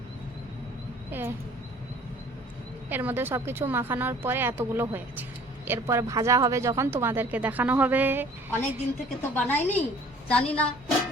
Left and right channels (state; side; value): normal; both; correlation 0.52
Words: এর মধ্যে সব কিছু মাখানোর পরে এতগুলো হয়েছে। এরপরে ভাজা হবে যখন তোমাদেরকে দেখানো হবে। অনেক দিন থেকে তো বানাইনি, জানি না,